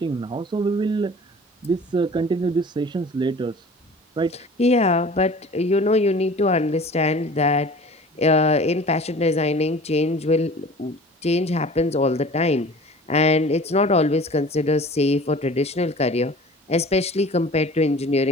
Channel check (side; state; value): both; normal; correlation 0.43